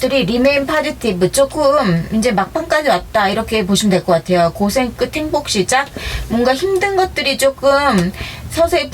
remain positive, 조금 이제 막판까지 왔다, 이렇게 보시면 될 것 같아요. 고생 끝 행복 시작, 뭔가 힘든 것들이 조금 서서히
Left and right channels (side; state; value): both; identical; correlation 1.00